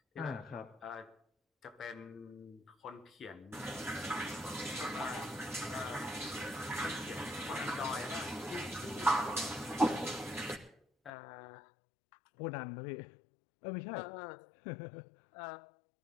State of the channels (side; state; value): right; drops out; at 11.1 s